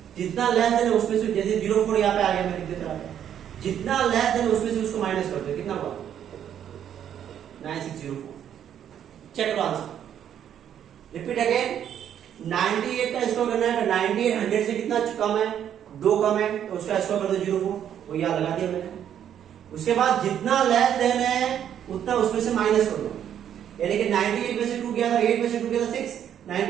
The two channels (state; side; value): quieter; left; 9.7 dB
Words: जितना लेस देन है उसमें से, जैसे 04 यहाँ पे आ गया, मैं लिख देता हूं, जितना लेस देन है उसमें से उसको माइनस कर दो, कितना हुआ 9604। चेक करो आंसर, रिपीट अगेन, 98 का स्क्वायर करना है, तो 98 100 से कितना कम है, 2 कम है, तो उसका स्क्वायर कर दो 04, वो यहाँ लगा दिया मैंने। उसके बाद जितना लेस देन है उतना उसमें से माइनस कर दो, यानी कि 98 में से 2 गया था, 8 में से 2 गया था 6,